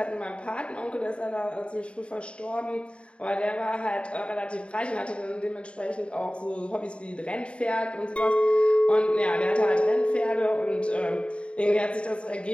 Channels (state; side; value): late; right; 0.058 ms